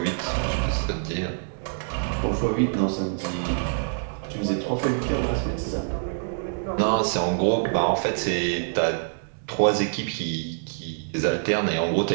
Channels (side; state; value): left; silent; digital silence